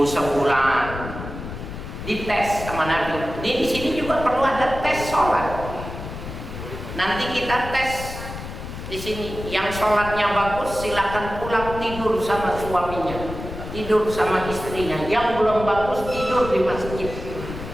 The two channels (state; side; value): noise; left; rumble, 9 dB below the sound